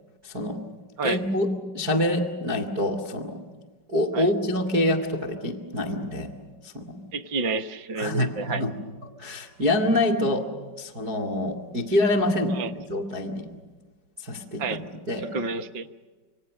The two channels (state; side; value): late; left; 5.2 ms